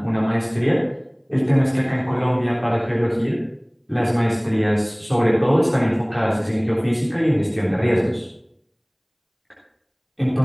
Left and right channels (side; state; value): both; identical; correlation 1.00